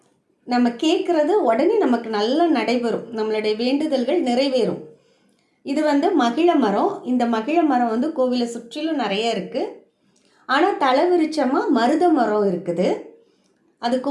நம்ம கேட்குறது உடனே நமக்கு நல்லா நடைபெறும், நம்மளுடைய வேண்டுதல்கள் நிறைவேறும். இது வந்து மகிழ மரம். இந்த மகிழ மரம் வந்து கோவிலை சுற்றிலும் நிறைய இருக்குது. ஆனால் தலைவிருச்சமாக மருத மரம் இருக்குது. அது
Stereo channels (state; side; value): identical; both; correlation 1.00